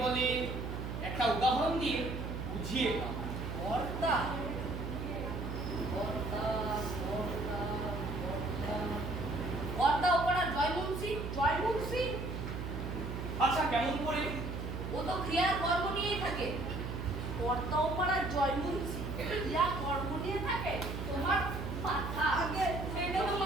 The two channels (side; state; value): right; noise; hum, 5 dB below the sound